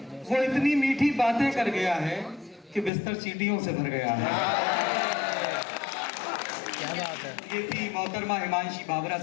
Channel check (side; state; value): right; drops out; at 2.9 s